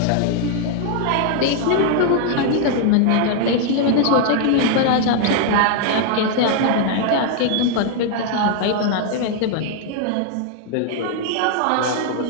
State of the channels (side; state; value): both; different; correlation 0.00